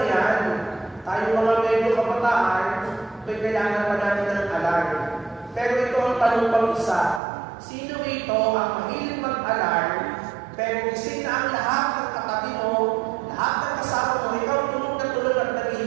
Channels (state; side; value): drops out; left; at 7.2 s